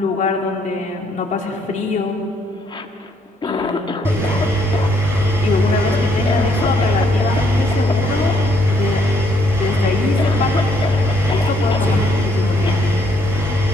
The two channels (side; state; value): both; normal; correlation 0.69